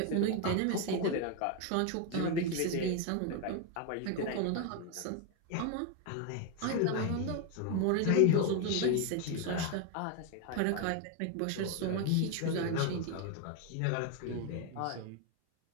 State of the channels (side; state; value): both; different; correlation 0.01